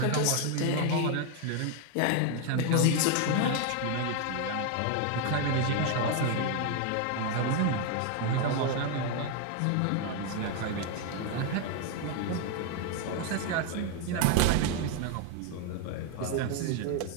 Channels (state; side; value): different; both; correlation 0.01